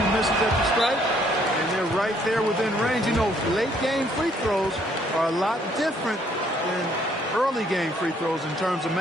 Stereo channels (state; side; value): normal; both; correlation 0.66